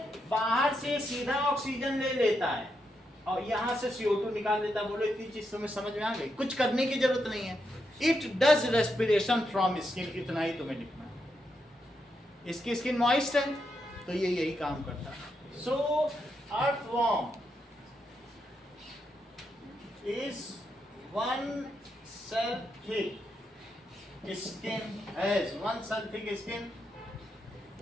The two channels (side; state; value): both; normal; correlation 0.83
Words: बाहर से सीधा ऑक्सीजन ले लेता है और यहाँ से CO2 निकाल देता है। बोलो इतनी चीज तुम्हें समझ में आ गई, कुछ करने की जरूरत नहीं है। It does respiration from skin, इतना ही तुम्हें लिखना है। इसकी स्किन मॉइस्ट है तो ये यही काम करता है। सो earthworm is 1 cell thick skin, has 1 cell thick skin,